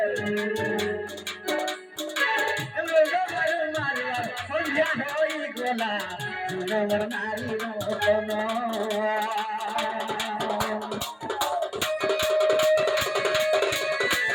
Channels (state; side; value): identical; both; correlation 1.00